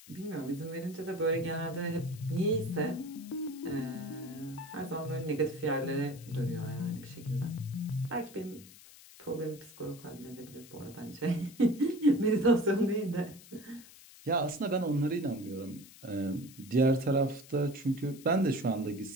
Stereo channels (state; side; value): noise; left; hiss, 20 dB below the sound